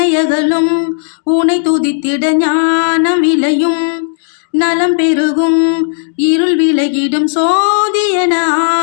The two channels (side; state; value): right; silent; digital silence